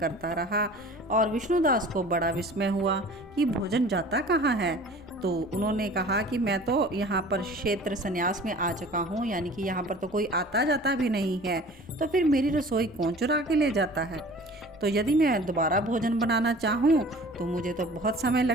रहा और विष्णुदास को बड़ा विस्मय हुआ कि भोजन जाता कहाँ है। तो उन्होंने कहा कि मैं तो यहाँ पर क्षेत्र संन्यास में आ चुका हूँ, यानी कि यहाँ पर तो कोई आता जाता भी नहीं है, तो फिर मेरी रसोई कौन चुरा के ले जाता है। तो यदि मैं दोबारा भोजन बनाना चाहूँ तो मुझे तो बहुत समय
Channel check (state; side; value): normal; both; correlation 0.45